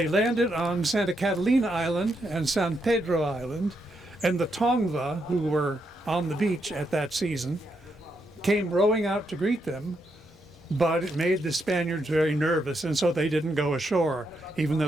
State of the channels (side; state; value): both; normal; correlation 0.80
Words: landed on Santa Catalina Island and San Pedro Island, and the Tongva, who were on the beach at that season, came rowing out to greet them, but it made the Spaniards very nervous, and so they didn't go ashore. Even though